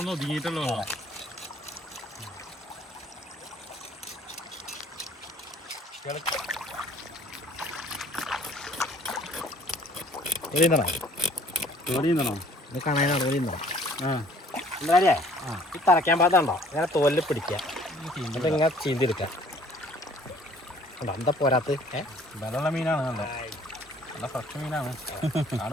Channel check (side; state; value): both; normal; correlation 0.56